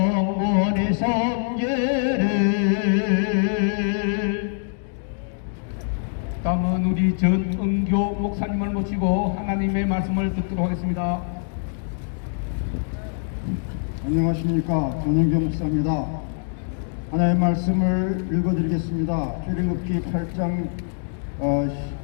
섬기리. 다음은 우리 전은교 목사님을 모시고 하나님의 말씀을 듣도록 하겠습니다. 안녕하십니까. 전은교 목사입니다. 하나님의 말씀을 읽어드리겠습니다. 출애굽기 8장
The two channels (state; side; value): silent; right; digital silence